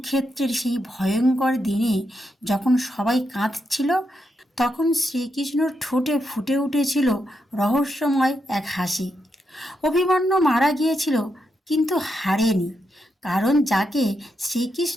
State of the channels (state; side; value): normal; both; correlation 0.83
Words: সেই ভয়ঙ্কর দিনে যখন সবাই কাঁদছিল, তখন শ্রীকৃষ্ণর ঠোঁটে ফুটে উঠেছিল রহস্যময় এক হাসি। অভিমন্যু মারা গিয়েছিল, কিন্তু হারেনি, কারণ যাকে